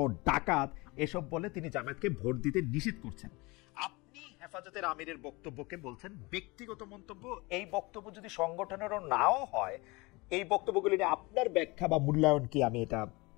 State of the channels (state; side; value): quieter; right; 24.7 dB